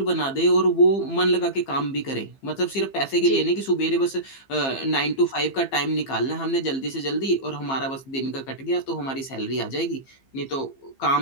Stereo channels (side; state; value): right; late; 15 ms